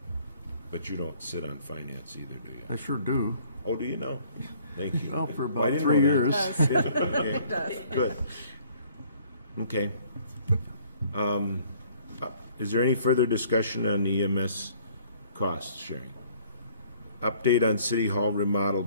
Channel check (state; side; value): inverted; both; correlation -0.58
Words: But you don't sit on finance either, do you? I sure do. Oh, do you know? Thank you. Well, for Well, I about didn't 3 know that. years. Okay, good. Okay. Is there any further discussion on EMS cost sharing? Update on City Hall